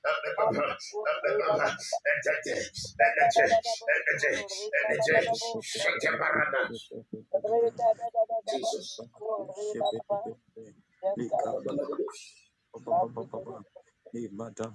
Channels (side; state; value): both; identical; correlation 1.00